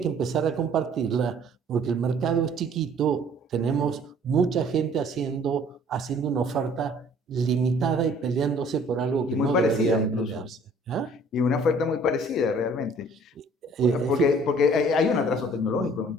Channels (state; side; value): normal; both; correlation 0.55